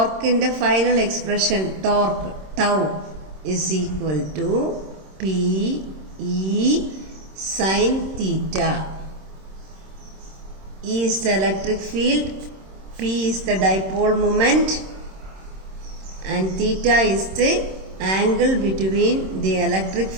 final expression torque tau is equal to P E sine theta. E is the electric field, P is the dipole moment and theta is the angle between the electric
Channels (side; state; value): left; late; 26 ms